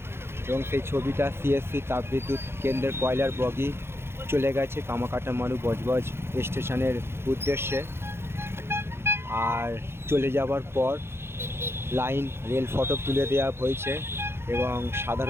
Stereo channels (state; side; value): late; left; 0.12 ms